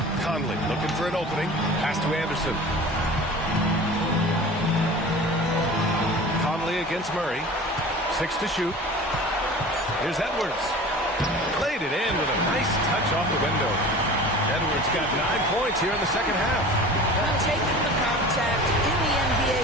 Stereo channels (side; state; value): both; normal; correlation 0.39